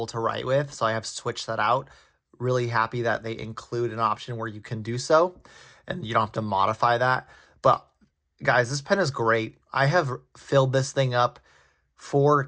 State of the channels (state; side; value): identical; both; correlation 1.00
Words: to write with, so I have switched that out. Really happy that they include an option where you can do so, and you don't have to modify that. But guys, this pen is great. I have filled this thing up 4